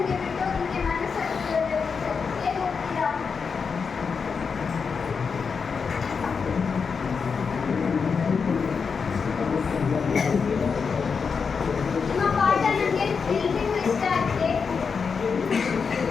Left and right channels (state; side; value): quieter; right; 5.6 dB